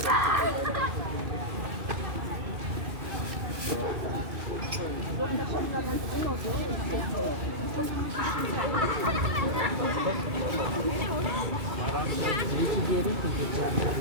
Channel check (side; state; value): left; late; 2.3 ms